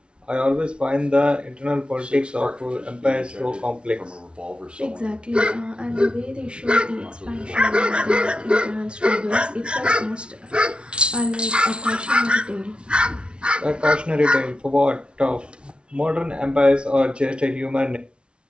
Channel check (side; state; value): left; late; 0.058 ms